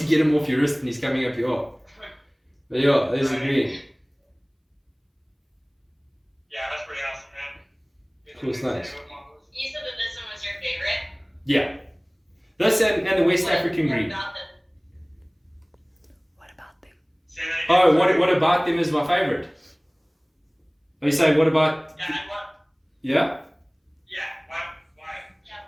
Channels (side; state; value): both; identical; correlation 1.00